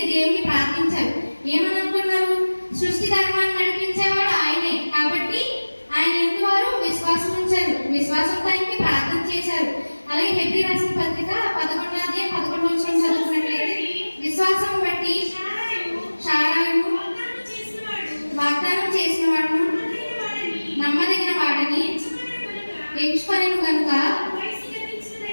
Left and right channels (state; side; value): inverted; both; correlation -1.00